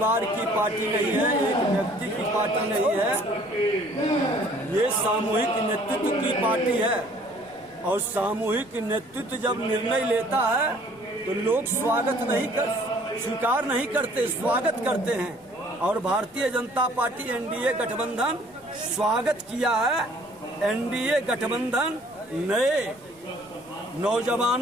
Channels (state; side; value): noise; left; rumble, 28 dB below the sound